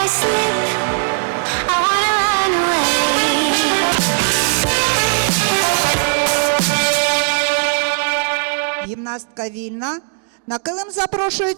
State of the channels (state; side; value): silent; left; digital silence